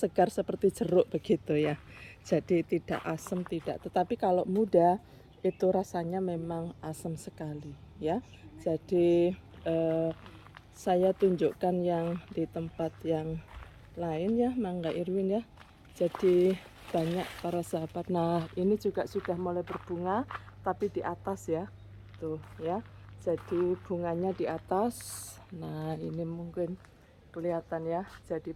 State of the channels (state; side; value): identical; both; correlation 1.00